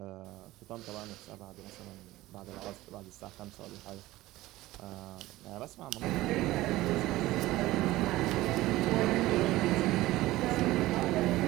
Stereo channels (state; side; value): quieter; left; 17.4 dB